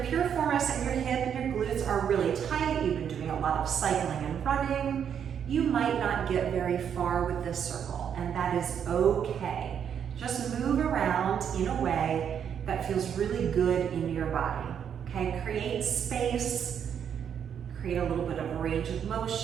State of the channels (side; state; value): left; quieter; 8.2 dB